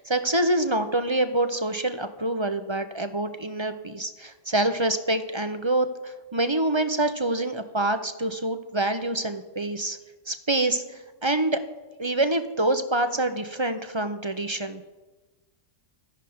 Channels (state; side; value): late; left; 1.3 ms